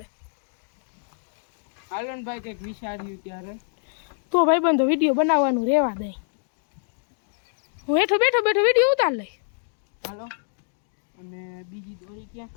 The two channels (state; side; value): silent; right; digital silence